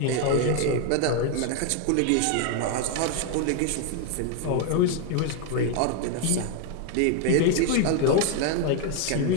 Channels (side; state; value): both; different; correlation 0.01